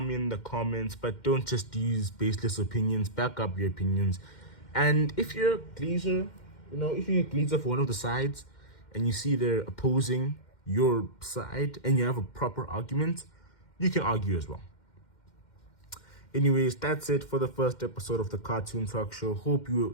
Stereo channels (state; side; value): late; right; 2.1 ms